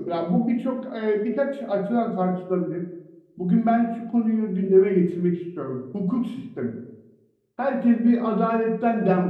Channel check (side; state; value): both; identical; correlation 1.00